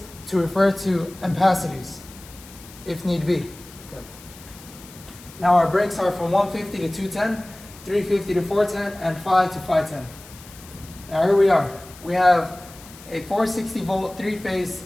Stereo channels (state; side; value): noise; left; hiss, 20 dB below the sound